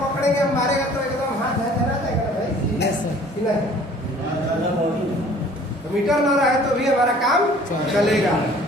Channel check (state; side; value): normal; both; correlation 0.52